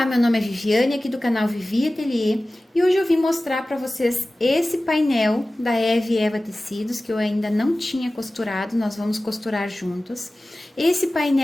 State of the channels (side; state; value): both; normal; correlation 0.97